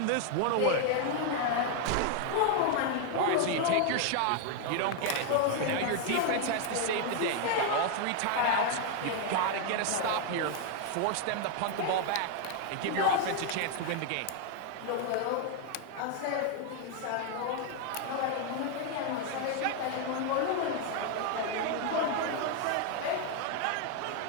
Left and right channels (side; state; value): both; different; correlation 0.01